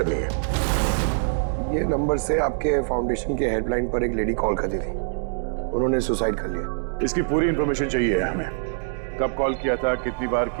है। ये नंबर से आपके फाउंडेशन के हेल्पलाइन पर एक लेडी कॉल करती थी, उन्होंने सुसाइड कर लिया। इसकी पूरी इंफॉर्मेशन चाहिए हमें। कब कॉल किया था, कितनी बार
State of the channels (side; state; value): left; silent; digital silence